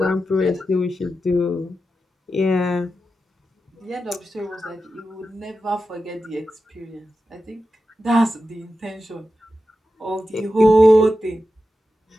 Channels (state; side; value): normal; both; correlation 0.91